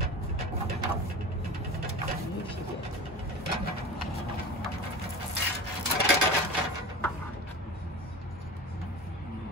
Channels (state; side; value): normal; both; correlation 0.31